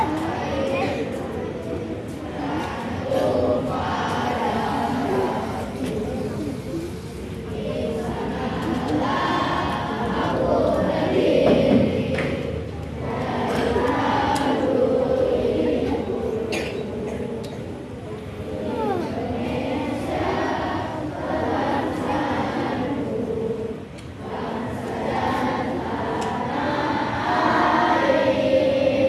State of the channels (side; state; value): both; identical; correlation 1.00